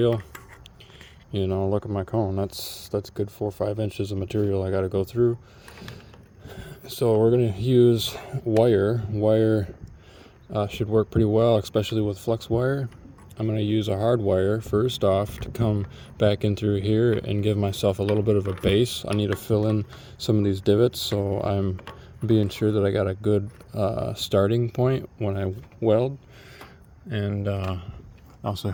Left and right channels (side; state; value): both; identical; correlation 1.00